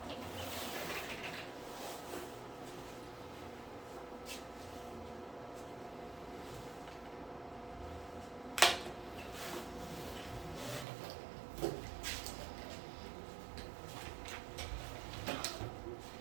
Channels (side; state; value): left; drops out; at 10.9 s